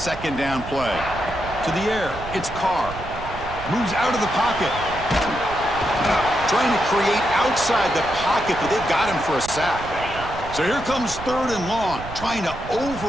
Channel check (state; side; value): noise; right; rumble, 12 dB below the sound